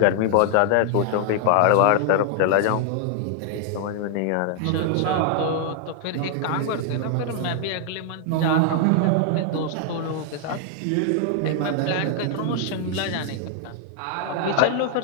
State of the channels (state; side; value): different; both; correlation 0.00